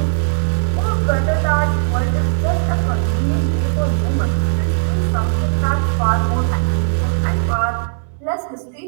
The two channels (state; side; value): silent; left; digital silence